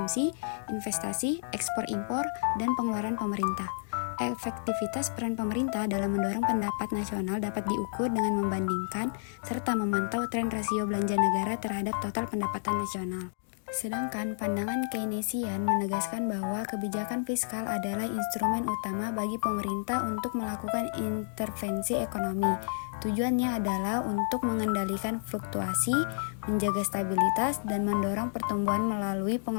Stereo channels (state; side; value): silent; right; digital silence